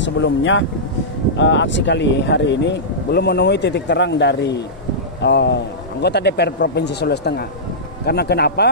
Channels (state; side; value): normal; both; correlation -0.15